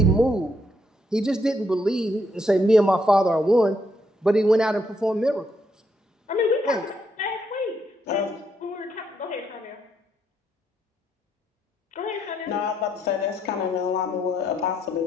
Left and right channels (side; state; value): both; normal; correlation 0.75